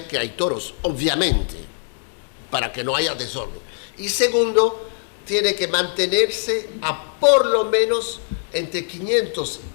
que hay toros, obviamente, para que no haya desorden. Y segundo, tiene que mantenerse a por lo menos entre 500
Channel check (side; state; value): right; silent; 64 dB below the other